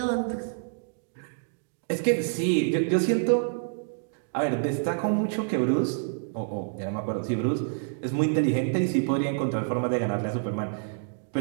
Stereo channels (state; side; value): silent; left; digital silence